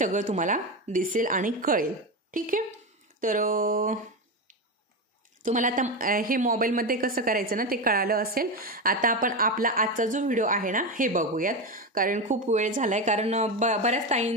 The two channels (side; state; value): both; normal; correlation 0.16